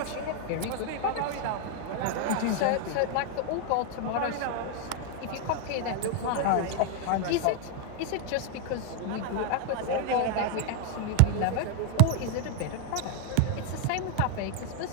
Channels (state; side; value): different; both; correlation 0.00